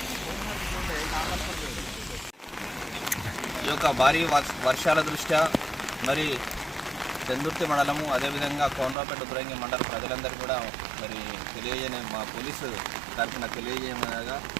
ఈ యొక్క భారీ వర్షాల దృష్ట్యా మరి చందుర్తి మండలము అదేవిధంగా కోనరావుపేట ఉత్తరంగి మండల ప్రజలందరూ కూడా మరి మా పోలీసు తరఫున తెలియజేయమనగా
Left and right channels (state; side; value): drops out; left; at 9.0 s